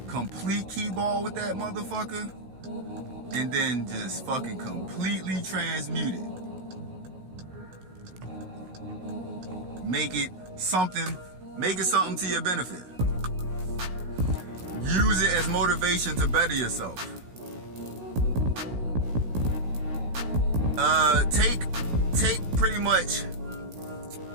complete key ball with that motherfucker, and then just fucking completely transmute it. Make it something to your benefit. Use it as motivation to better yourself. Take pretty much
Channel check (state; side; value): late; left; 16 ms